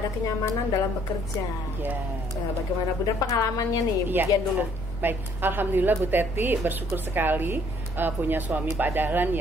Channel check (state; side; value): normal; both; correlation 0.63